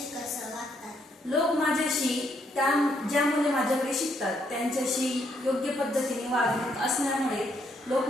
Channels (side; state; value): both; normal; correlation 0.74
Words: कसं वागतात? लोक माझ्याशी ज्या मुले माझ्याकडे शिकतात त्यांच्याशी योग्य पद्धतीने वागणूक असल्यामुळे लोक